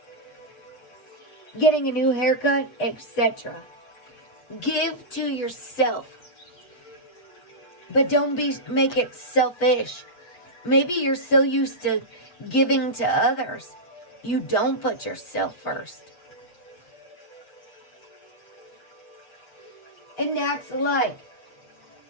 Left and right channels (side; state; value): right; late; 8.3 ms